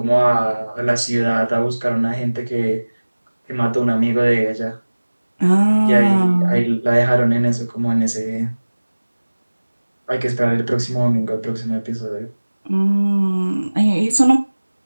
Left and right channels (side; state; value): both; inverted; correlation -1.00